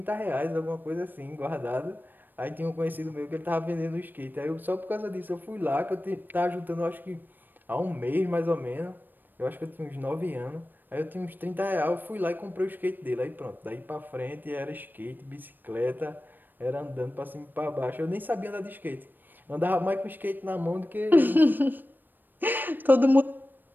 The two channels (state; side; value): late; left; 0.092 ms